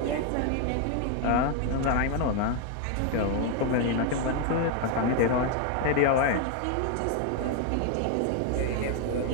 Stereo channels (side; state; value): both; different; correlation 0.01